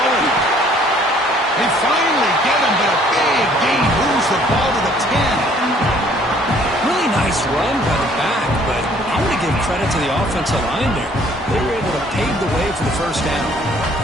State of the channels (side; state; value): both; normal; correlation 0.59